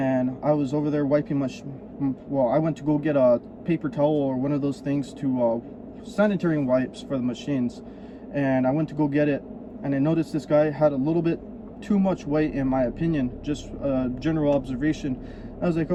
I was over there wiping my I went to go get a paper towel or one of those things to sanitary wipes for the machines, and I went to go get it, and I noticed this guy had a little bit too much weight, in my opinion. Just a general observation. I was like,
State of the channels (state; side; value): identical; both; correlation 1.00